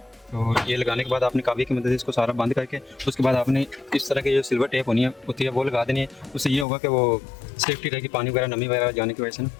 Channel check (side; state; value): right; drops out; at 6.7 s